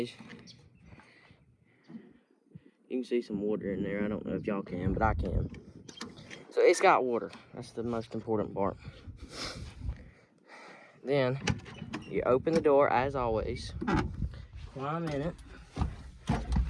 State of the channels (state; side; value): identical; both; correlation 1.00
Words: you can see some water in there. I don't know if y'all can, but I can. So it's got water. That's the most important part. Then you open the door as always, climb in it.